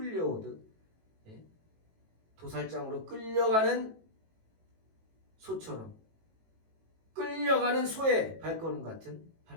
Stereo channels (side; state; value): left; late; 18 ms